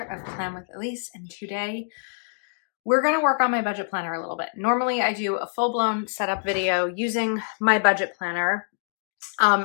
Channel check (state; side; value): silent; right; digital silence